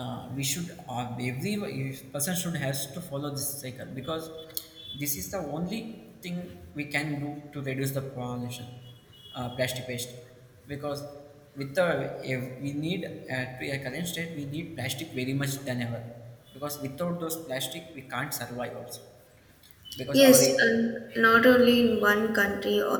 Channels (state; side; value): identical; both; correlation 1.00